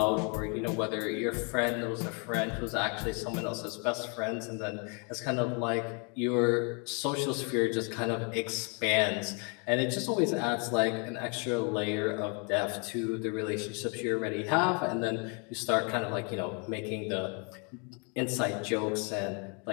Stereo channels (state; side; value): quieter; right; 35.6 dB